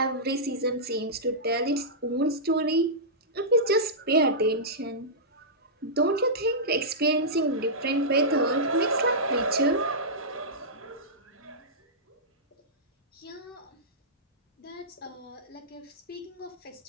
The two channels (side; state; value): both; normal; correlation -0.15